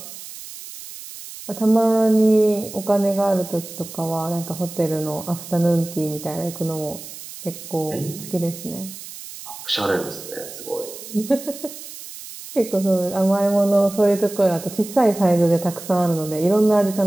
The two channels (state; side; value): noise; right; hiss, 13 dB below the sound